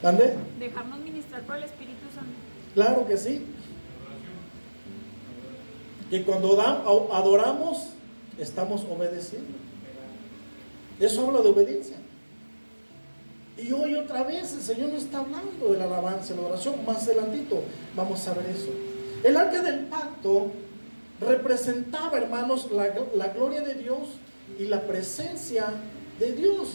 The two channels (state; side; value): inverted; both; correlation -1.00